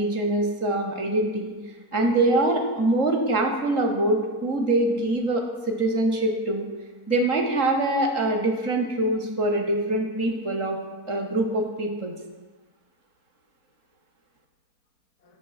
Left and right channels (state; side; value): late; right; 3.8 ms